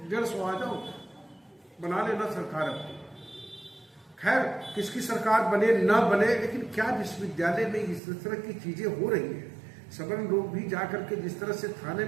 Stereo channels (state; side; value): drops out; left; at 8.0 s